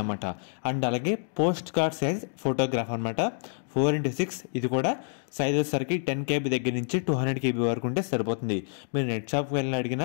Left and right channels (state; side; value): silent; right; digital silence